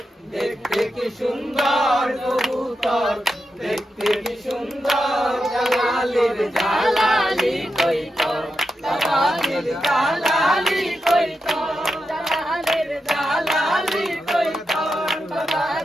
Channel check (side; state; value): both; normal; correlation 0.87